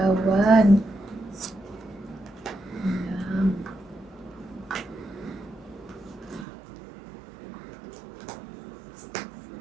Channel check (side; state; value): left; drops out; at 6.5 s